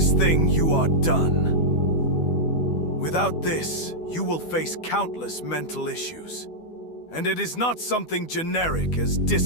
thing, you are done. Without this, you will face countless mental issues. And it is not something generic as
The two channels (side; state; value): right; late; 12 ms